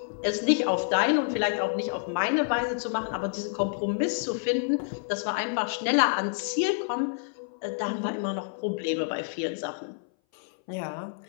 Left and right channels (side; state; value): right; silent; 58 dB below the other